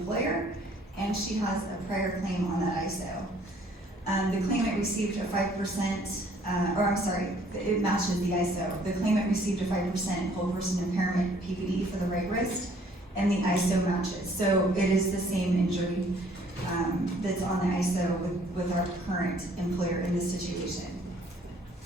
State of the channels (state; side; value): normal; both; correlation 0.59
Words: and she has a prior claim on that ISO. The claimant received a 5%, it matches the ISO. The claimant received a 5% whole person impairment PPD for the right wrist and the ISO matches. So it is the same injury that's on the ISO with our current employer in this situation.